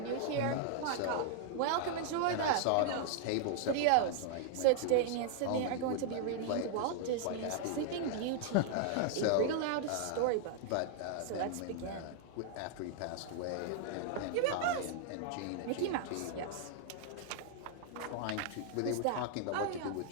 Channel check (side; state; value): both; different; correlation 0.00